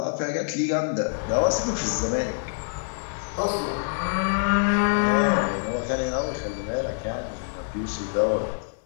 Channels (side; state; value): right; silent; 56 dB below the other